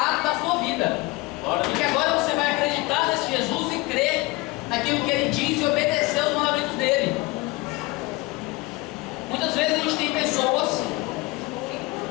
vida. E que agora você vai acreditar nesse Jesus e crer naquilo que ele diz e obedecer aos mandamentos dele. Muitas vezes a gente tem pessoas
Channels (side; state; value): right; quieter; 22.7 dB